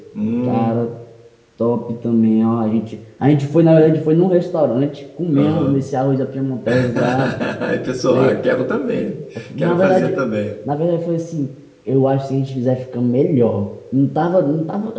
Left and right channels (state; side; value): identical; both; correlation 1.00